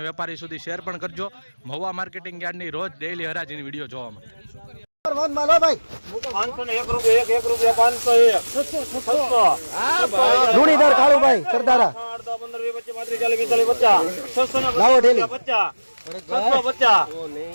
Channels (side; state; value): both; inverted; correlation -1.00